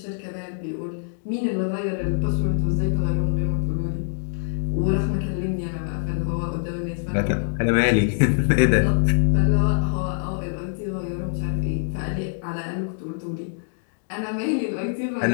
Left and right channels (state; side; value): silent; right; digital silence